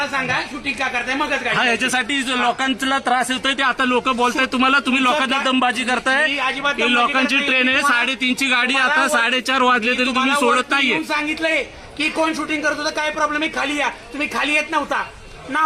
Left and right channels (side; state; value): both; identical; correlation 1.00